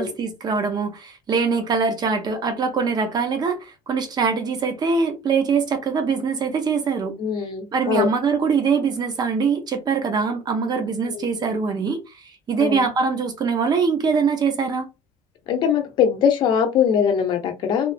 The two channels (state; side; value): normal; both; correlation 0.47